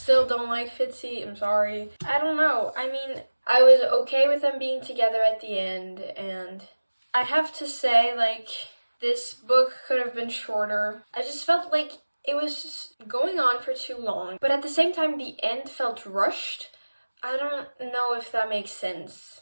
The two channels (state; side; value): inverted; both; correlation -1.00